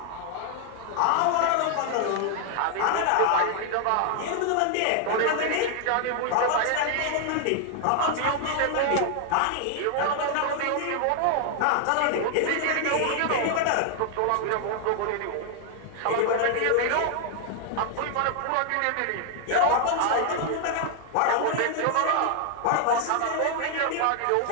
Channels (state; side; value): different; both; correlation 0.00